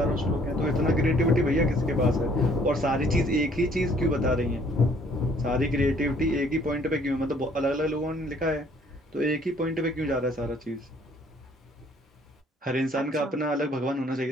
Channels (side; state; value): both; normal; correlation 0.60